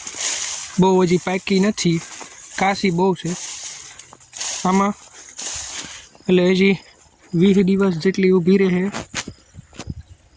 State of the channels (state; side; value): identical; both; correlation 1.00